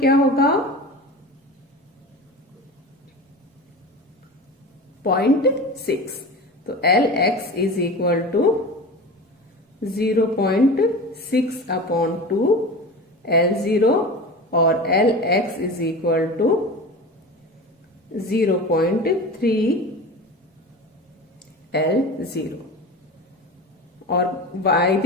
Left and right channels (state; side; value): normal; both; correlation 0.31